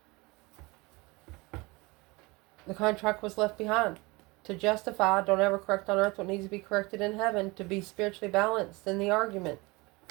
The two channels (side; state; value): left; quieter; 24.3 dB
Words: The contract was left behind. To justify, don't ever correct on earth what needs to be corrected in heaven. To be spiritually balanced in the argument.